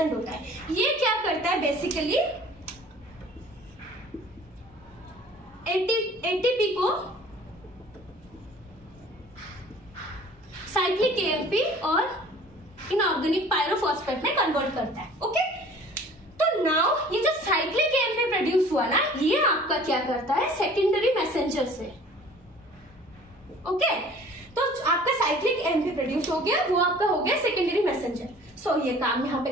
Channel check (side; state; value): both; normal; correlation 0.48